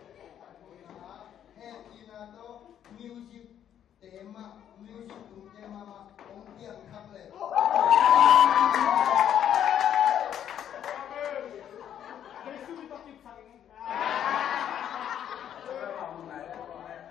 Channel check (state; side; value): quieter; right; 9.9 dB